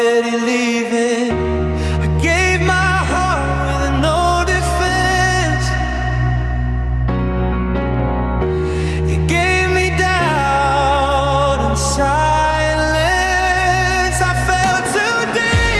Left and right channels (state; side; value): identical; both; correlation 1.00